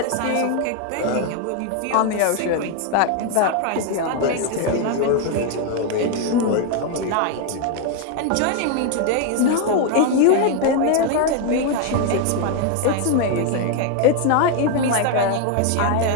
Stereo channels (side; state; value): both; different; correlation 0.00